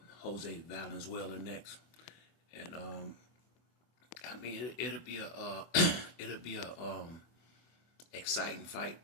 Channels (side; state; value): right; late; 24 ms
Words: Jose Valenzuela next, and I mean it'll be a it'll be a exciting fight